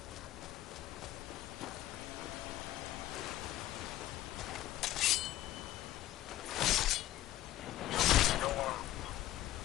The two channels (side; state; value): right; quieter; 14.5 dB